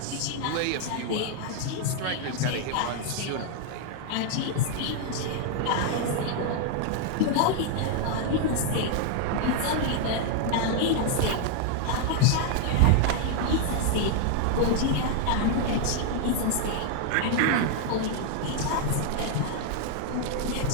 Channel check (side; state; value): both; different; correlation 0.00